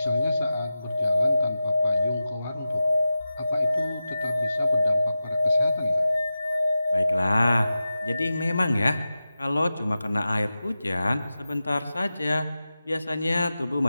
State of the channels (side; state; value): both; inverted; correlation -0.93